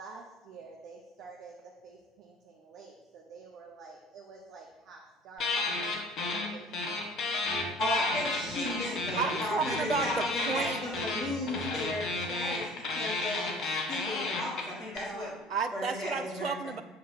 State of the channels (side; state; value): both; normal; correlation 0.47